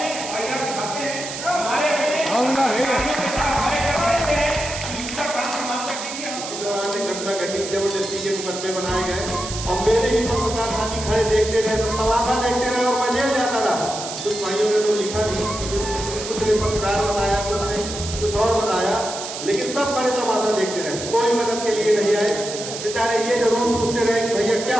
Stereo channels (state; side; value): noise; right; hiss, 8 dB below the sound